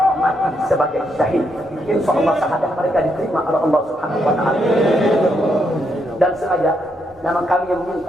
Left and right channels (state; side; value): normal; both; correlation 0.78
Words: mati sebagai syahid. Insya Allah syahadat mereka diterima oleh Allah Subhanahu wa Ta'ala. Dan sengaja memang kami yang